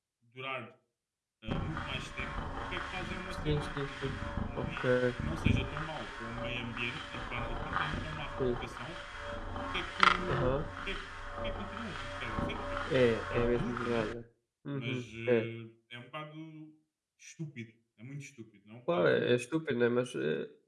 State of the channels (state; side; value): identical; both; correlation 1.00